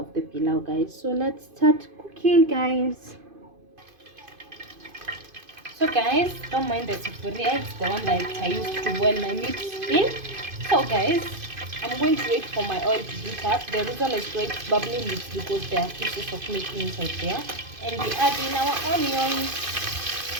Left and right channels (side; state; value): left; late; 2.5 ms